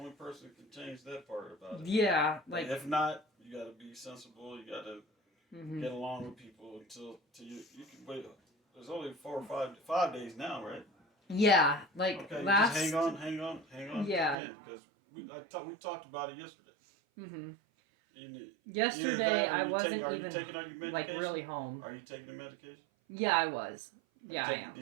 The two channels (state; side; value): drops out; left; at 14.4 s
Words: person who can change that part about it. yeah. But Like, if not, you gotta be sensible. You gotta mhm. get along with people until you can wait. There's only 4 or 5 days now, right? Yeah. Like, Okay, last. just hang on. Yeah. Because we talked about it yesterday. Mm-hmm. Either Yesterday, that or I you wasn't are you even taking out your medication? like really home. Are you taking the medication? Yeah, I was. Yeah, I am.